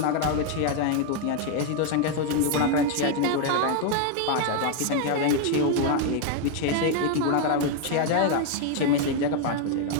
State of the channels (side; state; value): both; different; correlation 0.01